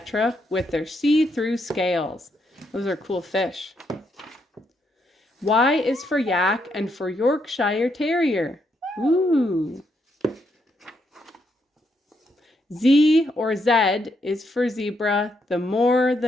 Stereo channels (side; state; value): both; normal; correlation 0.77